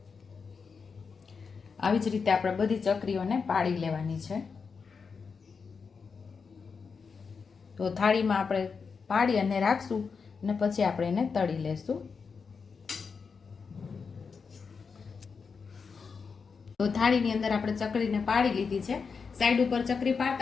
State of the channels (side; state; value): right; quieter; 5.4 dB